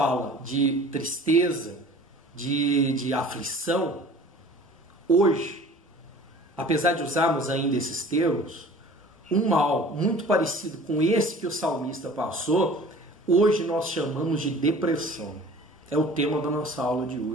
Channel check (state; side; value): normal; both; correlation 0.45